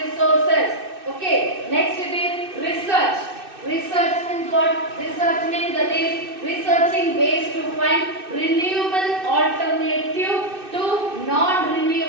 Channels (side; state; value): left; late; 2.6 ms